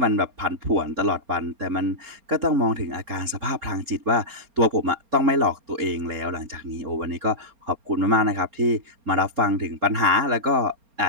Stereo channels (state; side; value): late; left; 4.3 ms